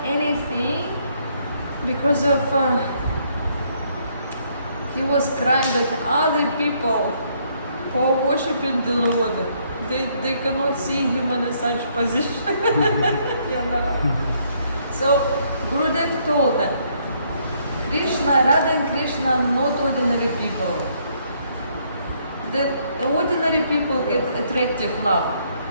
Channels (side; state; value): both; inverted; correlation -0.69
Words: anything because of he was crying that other people who are worshipping the Lord, they cannot see him in a such position. You know. So Gurudev told them, Krishna, Radha and Krishna are not ordinary people. The ordinary people get attractive love,